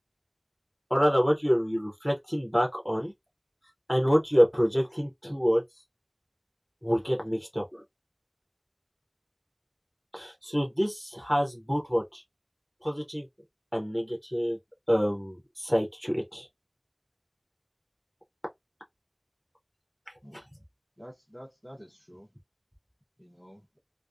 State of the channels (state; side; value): identical; both; correlation 1.00